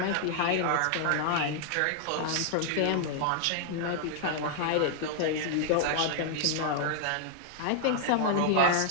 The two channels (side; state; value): both; different; correlation -0.01